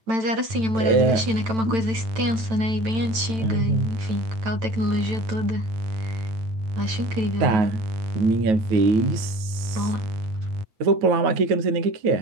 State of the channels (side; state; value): left; late; 9.0 ms